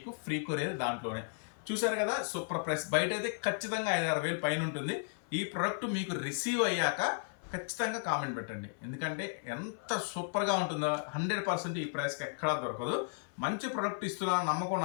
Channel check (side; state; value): right; silent; 55 dB below the other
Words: ఫ్రీ కొరియర్ దాంట్లోనే. చూసారు కదా, సూపర్ ప్రైస్. బయట అయితే ఖచ్చితంగా 5-6 వేలు పైన ఉంటుంది. ఈ ప్రోడక్ట్ మీకు రిసీవ్ అయ్యాక ఖచ్చితంగా కామెంట్ పెట్టండి, ఎందుకంటే ఎంత సూపర్గా ఉంటుందో 100% ఈ ప్రైస్కి ఎక్కడా దొరకదు. మంచి ప్రోడక్ట్ ఇస్తున్నా నమ్మకం